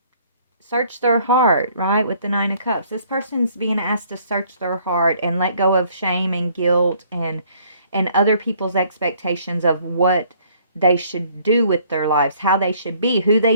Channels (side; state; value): both; inverted; correlation -0.61